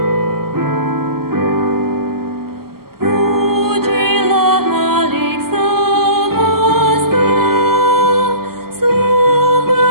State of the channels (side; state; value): left; late; 0.93 ms